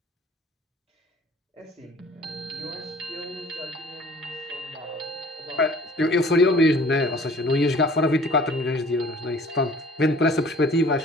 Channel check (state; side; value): normal; both; correlation 0.51